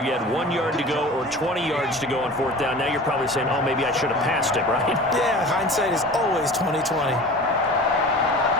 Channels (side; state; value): both; normal; correlation 0.39